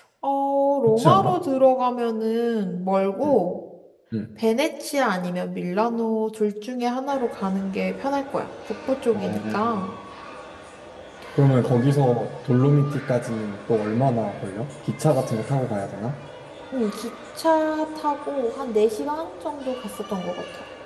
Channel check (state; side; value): identical; both; correlation 1.00